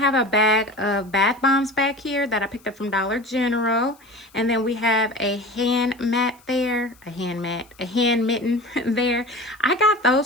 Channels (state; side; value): noise; left; hiss, 29 dB below the sound